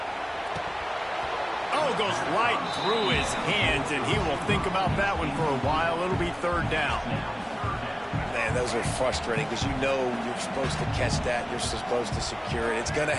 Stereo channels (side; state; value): both; identical; correlation 1.00